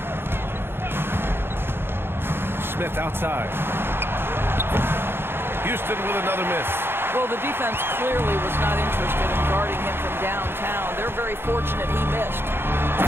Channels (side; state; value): left; late; 0.11 ms